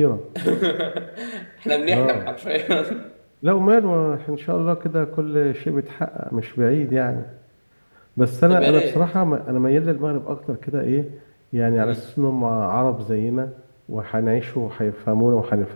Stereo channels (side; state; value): both; inverted; correlation -1.00